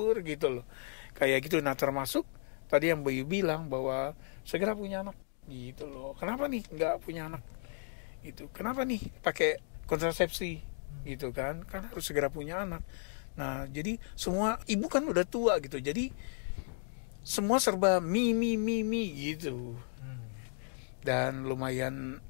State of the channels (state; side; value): silent; right; digital silence